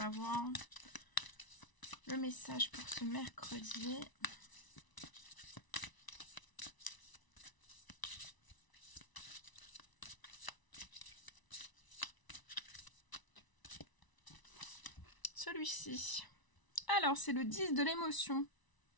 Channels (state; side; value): late; right; 1.0 ms